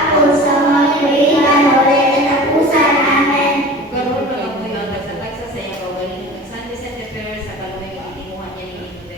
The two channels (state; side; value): normal; both; correlation 0.39